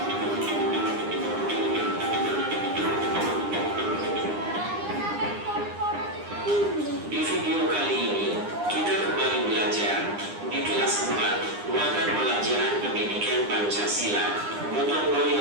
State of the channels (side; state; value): left; late; 9.8 ms